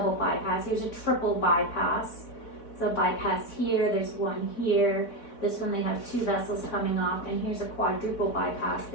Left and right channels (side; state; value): right; late; 4.0 ms